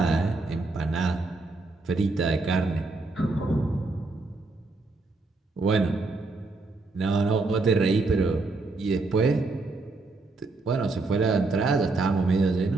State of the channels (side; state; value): left; quieter; 3.5 dB